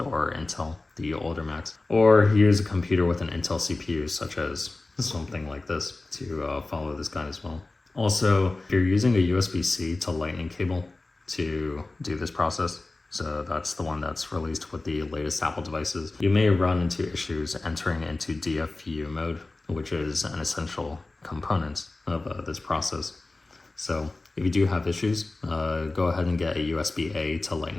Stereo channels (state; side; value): quieter; right; 3.2 dB